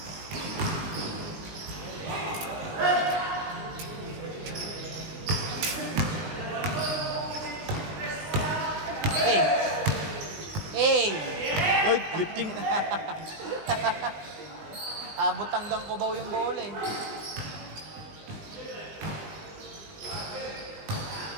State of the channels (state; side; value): late; left; 19 ms